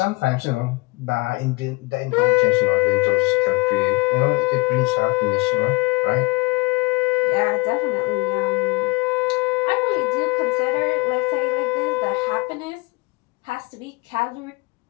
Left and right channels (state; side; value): quieter; right; 25.4 dB